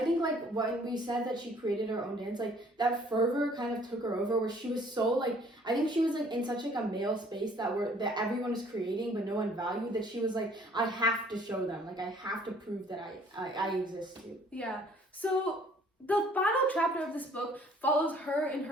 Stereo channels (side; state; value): both; normal; correlation 0.57